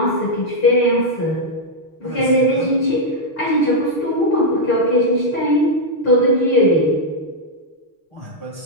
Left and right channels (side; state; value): right; late; 6.6 ms